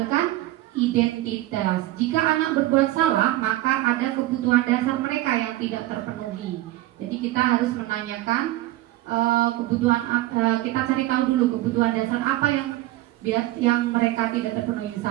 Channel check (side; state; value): left; quieter; 16.5 dB